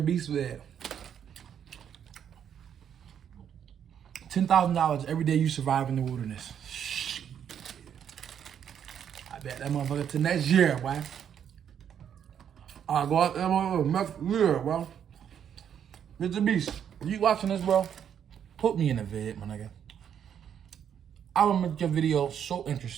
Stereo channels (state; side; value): quieter; left; 8.7 dB